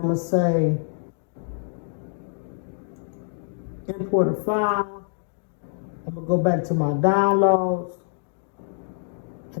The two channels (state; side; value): silent; right; 61 dB below the other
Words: gonna say import a file. I'm gonna go back to my downloads,